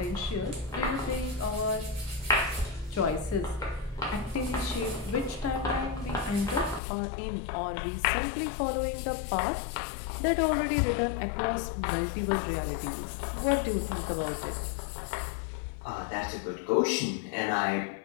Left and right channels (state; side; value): drops out; right; at 6.8 s